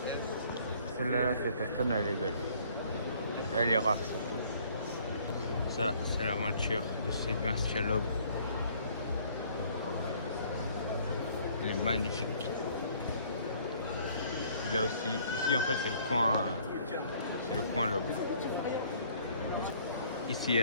Celle-là, cette Aston, elle est belle. Elle est rare, surtout. Ça, c'est la voiture de Sébastien Loeb. Elle est magnifique. Là aussi, ici en fait c'est le coin Loeb. Ici il y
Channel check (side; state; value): both; inverted; correlation -0.59